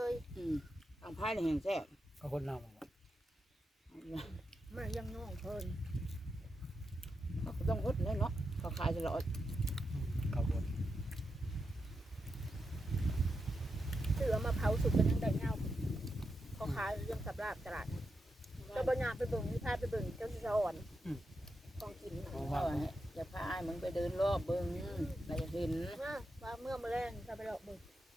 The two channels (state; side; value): normal; both; correlation 0.86